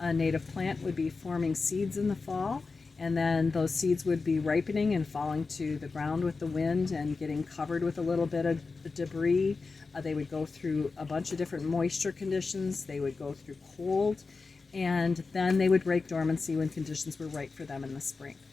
native plant would be forming seeds in the fall, and then those seeds would be ripening and falling to the ground with the wind and getting covered with a little bit of debris. They would go through a bunch of different moisture conditions. They would go through cold, and then they would break dormancy when conditions were right for them in the spring.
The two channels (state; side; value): quieter; right; 4.2 dB